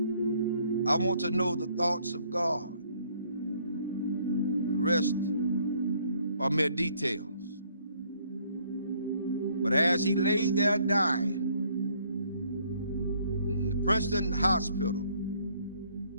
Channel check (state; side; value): inverted; both; correlation -0.65